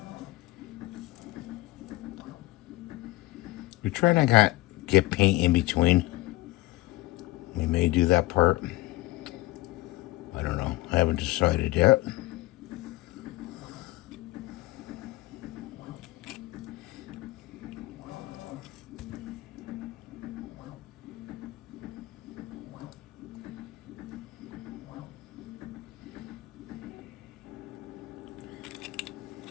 We try not to get paint in between. We may do that part. I don't know. I haven't decided yet.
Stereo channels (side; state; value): right; quieter; 19.1 dB